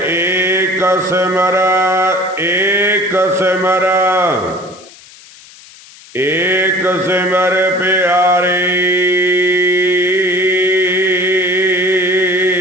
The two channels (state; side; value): noise; left; hiss, 22 dB below the sound